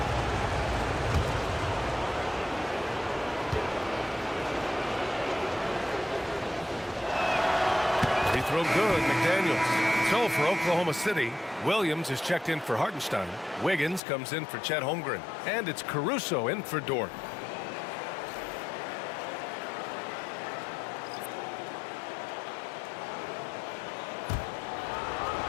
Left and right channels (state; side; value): drops out; right; at 14.0 s